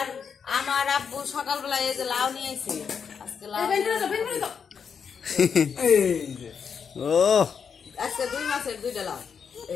আমার আব্বু সকালবেলা এই যে লাউ নিয়ে আইছে, আজকে লাউ ও আজকে 2 মাসের 2টা লাউ।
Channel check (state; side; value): quieter; right; 6.6 dB